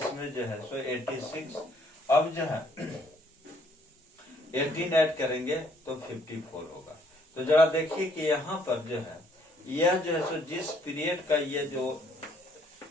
जो है सो 86। अब जो है 18 ऐड करेंगे तो 54 होगा। तो जरा देखिए कि यहाँ पर जो है यह जो है सो जिस पीरियड का ये जो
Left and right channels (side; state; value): both; normal; correlation 0.65